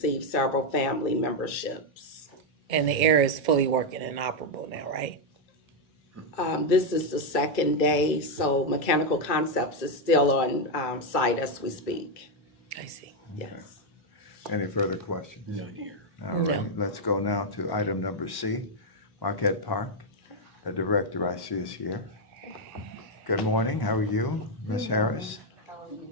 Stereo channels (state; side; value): normal; both; correlation 0.02